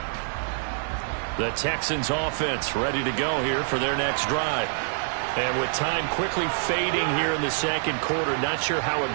The Texans offense ready to go here for their next drive. And with time quickly fading here in the second quarter, not sure how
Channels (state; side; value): silent; left; digital silence